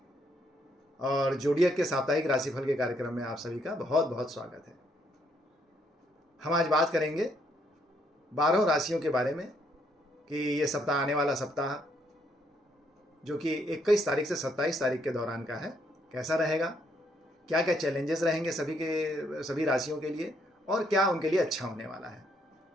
और जोडियक के साप्ताहिक राशिफल के कार्यक्रम में आप सभी का बहुत बहुत स्वागत है। हम आज बात करेंगे 12 राशियों के बारे में कि ये सप्ताह आने वाला सप्ताह जो कि 21 तारीख से 27 तारीख के दौरान का है कैसा रहेगा, क्या क्या चैलेंजेस रहेंगे सभी राशियों के लिए और क्या उनके लिए अच्छा होने वाला है।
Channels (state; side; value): normal; both; correlation 0.72